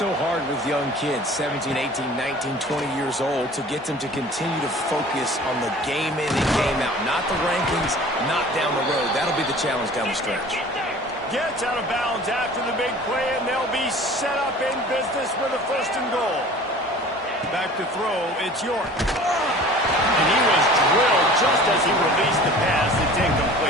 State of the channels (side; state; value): both; normal; correlation 0.45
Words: hard with young kids, 17, 18, 19, 20 years old, to get them to continue to focus on the game in and game out. Not the rankings, not down the road. That'll be the challenge down the stretch. Gets out of bounds after the big play, and they'll be set up in business with a first and goal. Back to throw, it's York. And he was drilled just as he released the pass. It's